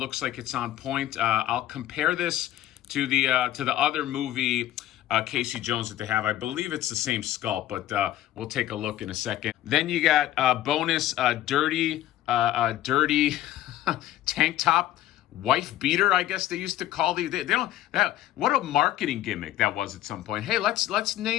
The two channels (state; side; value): quieter; right; 13.4 dB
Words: like it's on point. I'll compare this to the other movie Casey Jones that they have. I believe it's the same sculpt, but we'll take a look in a second. Then you got bonus dirty tank top, wife beater, I guess they used to call these. They don't. What a marketing gimmick that was at some point. Hey, let's